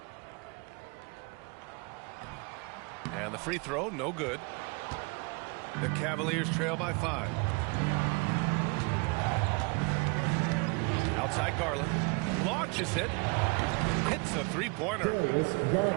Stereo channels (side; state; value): left; quieter; 30.2 dB